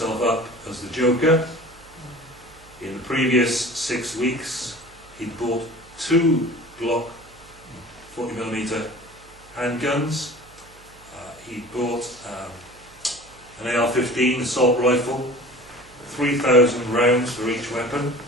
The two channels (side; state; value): right; noise; hum, 25 dB below the sound